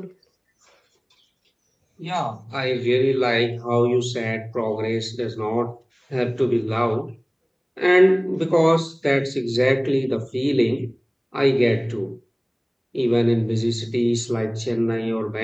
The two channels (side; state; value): both; identical; correlation 1.00